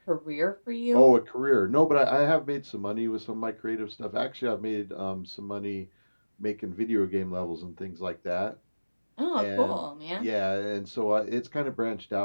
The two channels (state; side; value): inverted; both; correlation -1.00